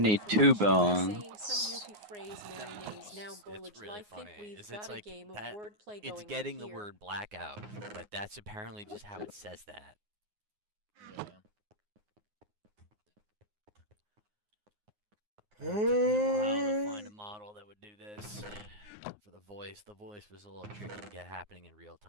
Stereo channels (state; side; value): late; left; 9.6 ms